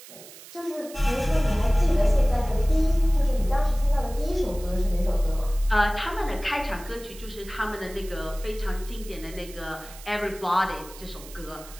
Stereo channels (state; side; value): noise; right; hiss, 18 dB below the sound